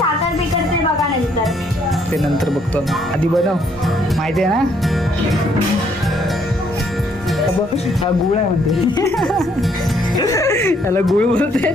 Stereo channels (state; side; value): normal; both; correlation 0.68